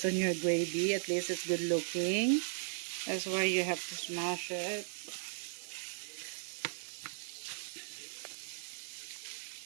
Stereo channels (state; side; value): silent; left; 53 dB below the other